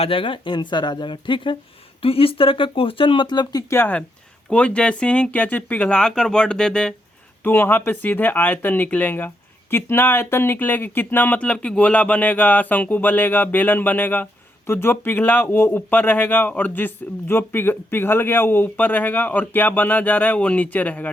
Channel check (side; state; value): both; normal; correlation 0.79